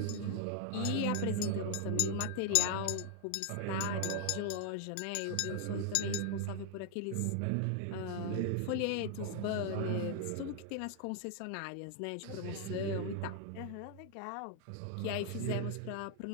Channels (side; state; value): both; different; correlation 0.00